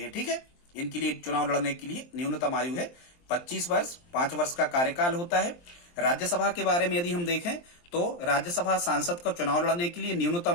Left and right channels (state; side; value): late; right; 23 ms